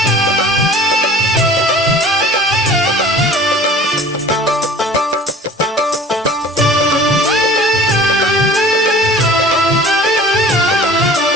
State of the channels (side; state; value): both; normal; correlation 0.45